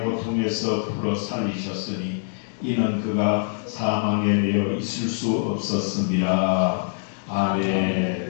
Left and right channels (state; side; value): silent; right; digital silence